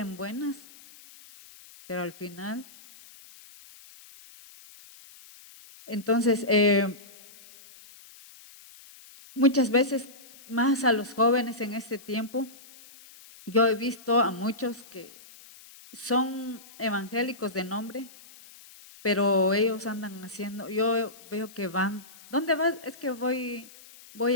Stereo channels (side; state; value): left; noise; hiss, 21 dB below the sound